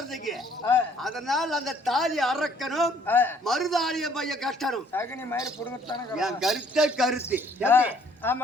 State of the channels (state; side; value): normal; both; correlation 0.62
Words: அதனால அந்த தாலி அறக்கணும், மறுதாலிய பைய கட்டணும். அகனி மயிறு புடுங்கத்தான என் கருத்து.